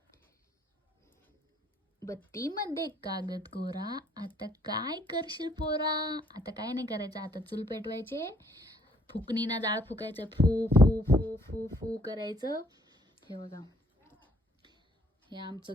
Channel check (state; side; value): normal; both; correlation 0.64